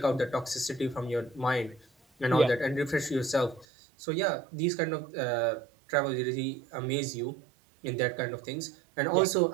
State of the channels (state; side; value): drops out; left; at 3.7 s